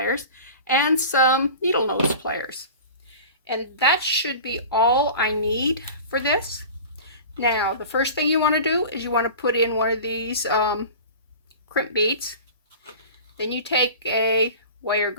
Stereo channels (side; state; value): both; inverted; correlation -0.37